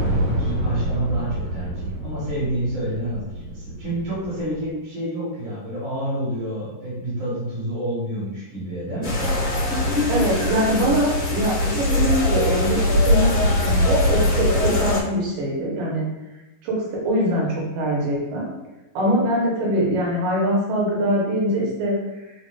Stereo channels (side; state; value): left; late; 11 ms